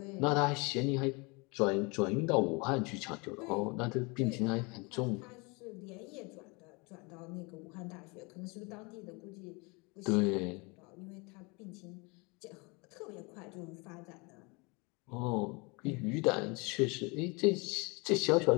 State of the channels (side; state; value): right; quieter; 28.8 dB